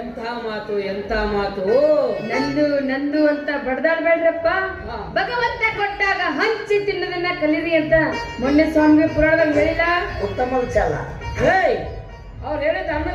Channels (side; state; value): both; identical; correlation 1.00